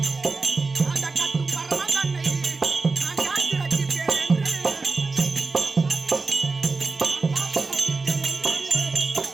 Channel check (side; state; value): left; quieter; 4.0 dB